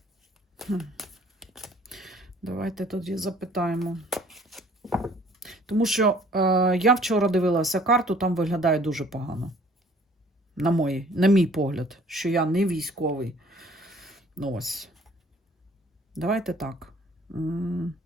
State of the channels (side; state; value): both; normal; correlation 0.56